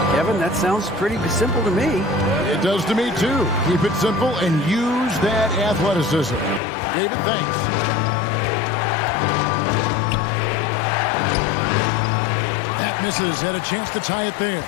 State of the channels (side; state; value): right; drops out; at 6.6 s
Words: Kevin, that sounds pretty simple to me. It does to me, too. Keep it simple and use that athleticism. David, thanks. That misses. Had a chance to tie it there.